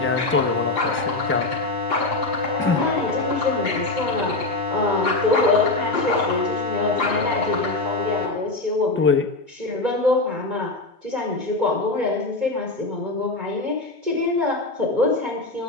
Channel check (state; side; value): quieter; right; 3.0 dB